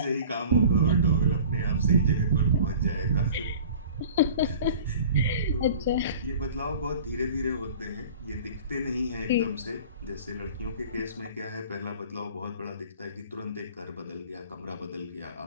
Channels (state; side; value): inverted; both; correlation -0.43